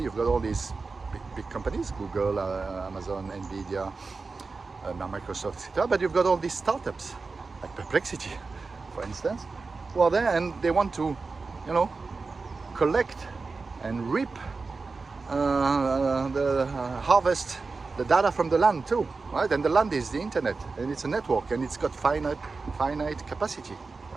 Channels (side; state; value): left; quieter; 4.2 dB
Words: you've got all these big companies, Google, Amazon, Nvidia, now Microsoft, etc. But you've got all these startups, like Perplexity, for instance, who are there and they want to, collect and reap, harvest the data from the land too, right? And the land is the internet, and it's a network, and it's got finite capacity,